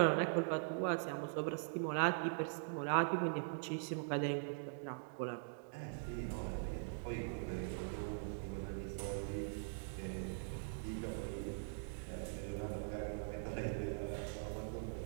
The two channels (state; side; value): silent; left; digital silence